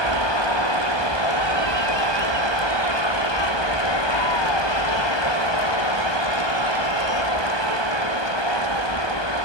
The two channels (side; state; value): right; late; 1.2 ms